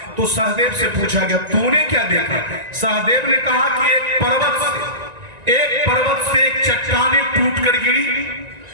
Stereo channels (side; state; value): left; late; 1.9 ms